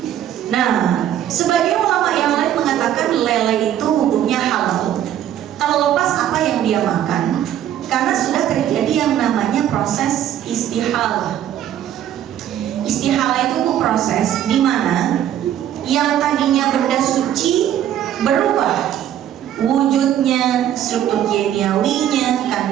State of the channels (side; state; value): left; quieter; 11.0 dB